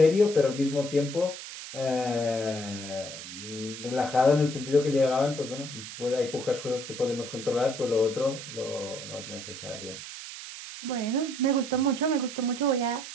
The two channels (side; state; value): right; noise; hiss, 11 dB below the sound